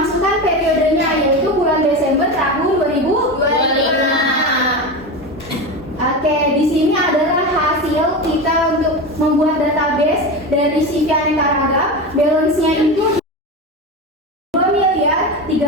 meneruskan periodenya, yaitu bulan Desember tahun 2025. Oke, di sini adalah hasil kita untuk membuat database dari CV aneka ragam. Balance-nya itu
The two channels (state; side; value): normal; both; correlation 0.22